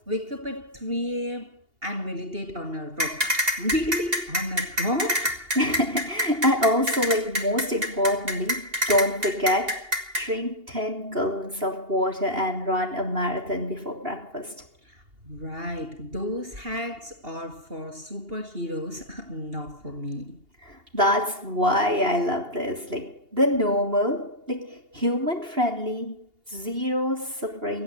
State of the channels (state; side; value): late; left; 2.8 ms